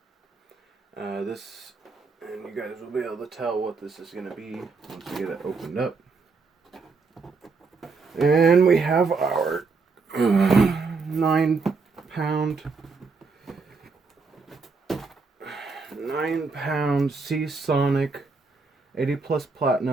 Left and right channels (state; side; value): quieter; left; 4.4 dB